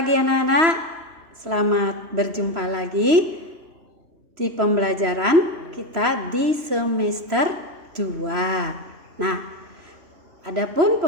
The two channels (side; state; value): left; late; 3.0 ms